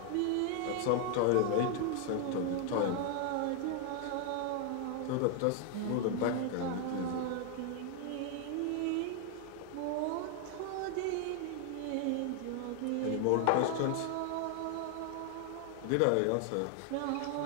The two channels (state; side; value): different; both; correlation 0.00